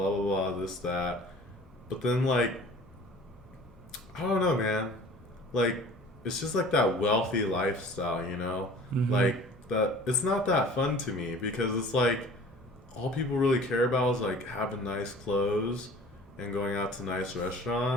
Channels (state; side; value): normal; both; correlation 0.46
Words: blah blah, this that. But then like, I don't know, man. Like, it's just like that wealthy lifestyle, you know? Like that. It's not that fun to me because it's like all people really care about is like having nice clothes and going out to nice